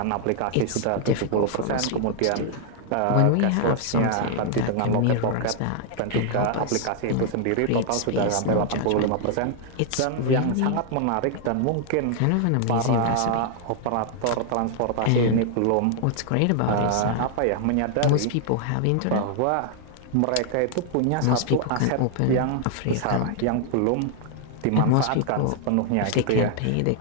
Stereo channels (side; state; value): both; different; correlation 0.00